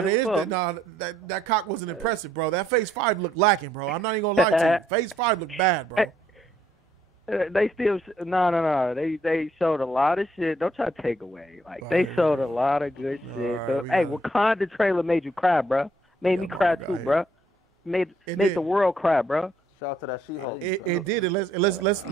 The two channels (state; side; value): normal; both; correlation 0.68